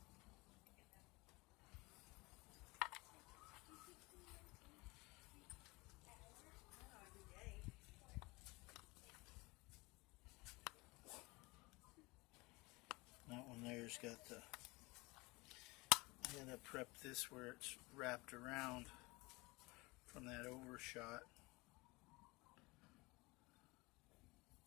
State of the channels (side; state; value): right; quieter; 24.2 dB